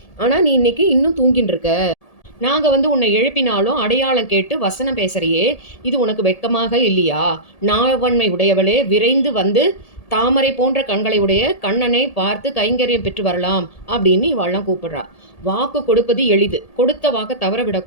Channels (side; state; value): right; late; 1.8 ms